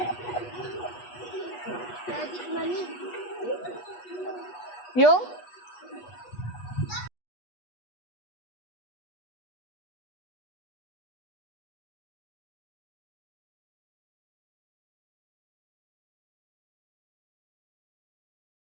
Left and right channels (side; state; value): right; late; 8.3 ms